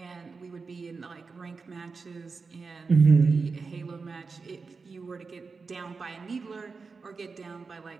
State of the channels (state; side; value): quieter; left; 4.6 dB